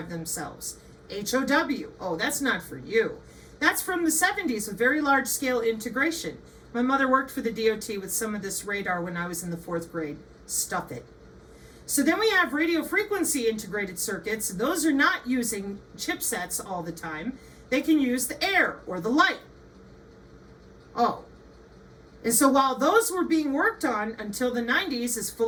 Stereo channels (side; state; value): both; identical; correlation 1.00